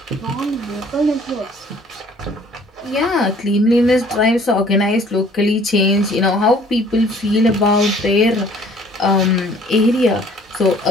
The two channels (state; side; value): normal; both; correlation 0.56